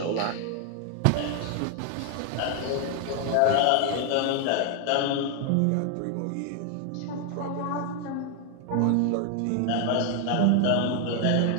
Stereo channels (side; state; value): both; different; correlation 0.00